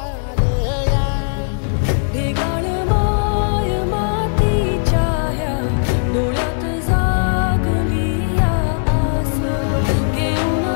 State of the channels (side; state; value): right; silent; digital silence